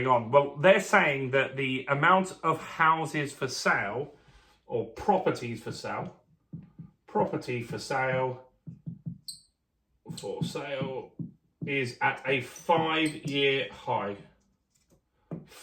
on. Well, they're saying that the amount of houses for sale, or properties for sale, is at a 5-year high.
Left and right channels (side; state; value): both; identical; correlation 1.00